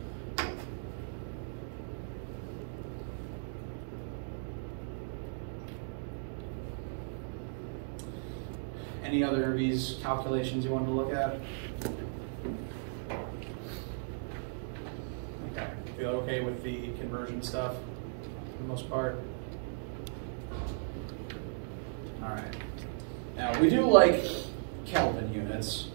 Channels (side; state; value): left; silent; digital silence